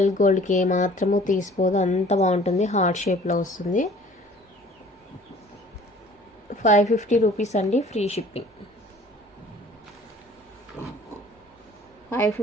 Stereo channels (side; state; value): both; normal; correlation 0.51